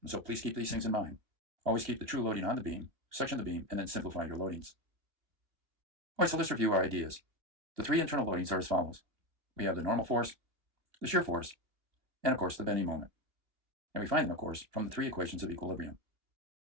And so please keep these things in mind. Always keep the true loading on the beam, section the beam, and then simplify your loadings. All right, so let's review our ideas. The three internal loadings are as follows. We have the normal force, the shear force, and of course the bending moment. And we find them, of course, from the three equations of equilibrium.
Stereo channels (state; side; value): late; left; 2.6 ms